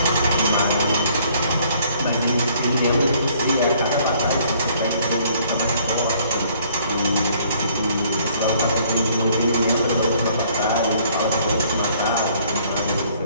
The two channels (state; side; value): inverted; both; correlation -0.61